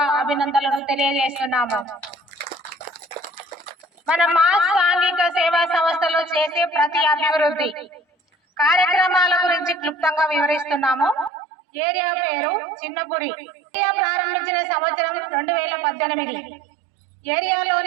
అభినందనలు తెలియజేస్తున్నాము. మన మాస్ సాంఘిక సేవా సంస్థలో చేసే ప్రతి అభివృద్ధి కార్యక్రమాల గురించి క్లుప్తంగా వివరిస్తున్నాము. ఏరియా పేరు చిన్నపురి. ఏరియా ప్రారంభించిన సంవత్సరం 2018.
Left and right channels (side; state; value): left; drops out; at 11.3 s